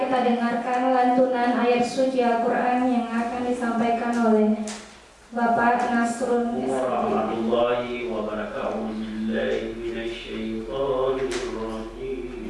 dengarkan lantunan ayat suci Al-Quran yang akan disampaikan oleh Bapak Nasrul warahmatullahi wabarakatuh.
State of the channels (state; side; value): identical; both; correlation 1.00